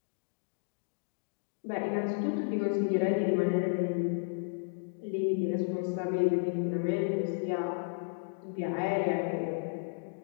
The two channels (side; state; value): right; silent; digital silence